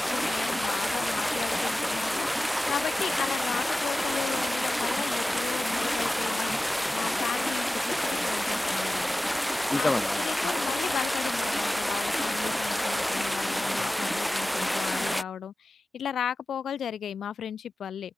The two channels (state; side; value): normal; both; correlation 0.95